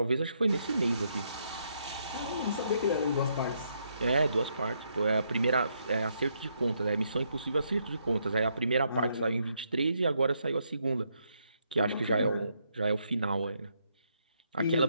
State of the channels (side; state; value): both; inverted; correlation -0.76